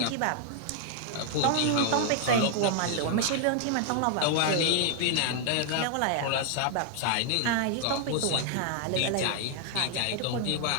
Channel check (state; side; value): different; both; correlation 0.00